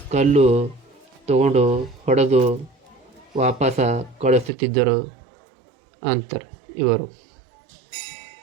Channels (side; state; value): left; drops out; at 4.5 s